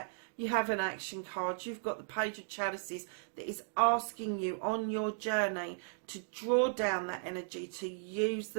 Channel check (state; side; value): silent; left; digital silence